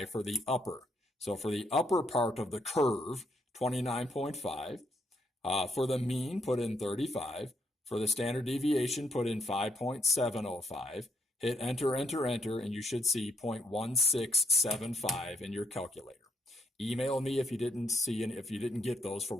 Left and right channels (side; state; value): both; normal; correlation 0.74